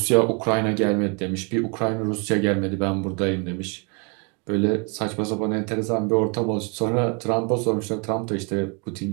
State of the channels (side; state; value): left; quieter; 34.0 dB